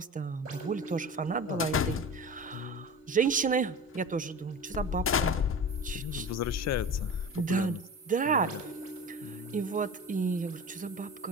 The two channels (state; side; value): normal; both; correlation 0.33